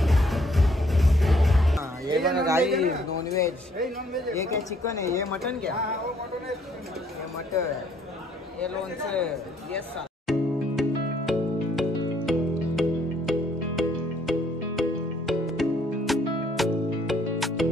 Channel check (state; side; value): normal; both; correlation 0.65